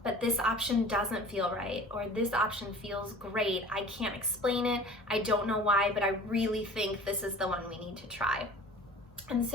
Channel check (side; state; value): both; normal; correlation 0.43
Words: but this option doesn't feel right, or this option feels great. I can't explain it. I don't know why, but I really think this is the one we need to try. And